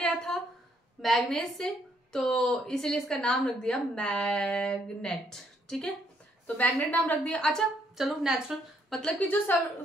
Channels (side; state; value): both; normal; correlation 0.71